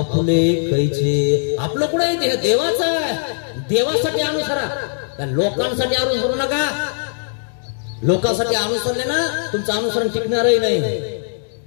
कैचे. आपलं कुठे आहे? देह देवाचा आहे. देवासाठी अनुसरा, त्या लोकांसाठी अनुसरू नका. लोकांसाठी अनुसरले ना तुमचं अनुसरण टिकणारही नाही.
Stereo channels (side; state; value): right; silent; digital silence